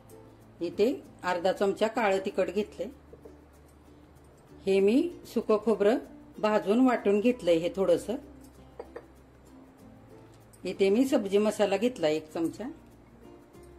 इथे अर्धा चमचा काळं तिखट घेतले। हे मी सुकं खोबरं भाजून वाटून घेतलंय हे थोडंसं। इथे मी सब्जी मसाला घेतला 1 चमचा,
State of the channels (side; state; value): both; identical; correlation 1.00